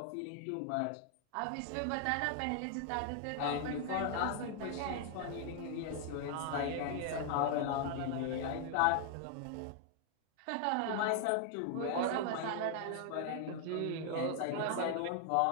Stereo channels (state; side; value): different; both; correlation 0.00